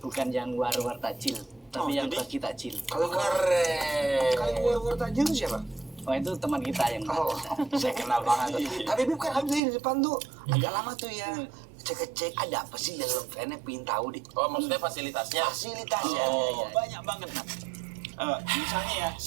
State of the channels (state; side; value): drops out; left; at 9.6 s